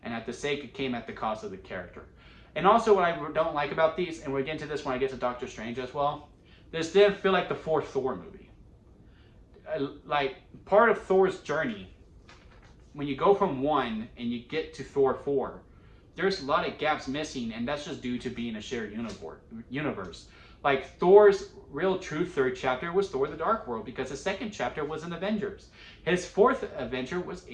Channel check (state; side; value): identical; both; correlation 1.00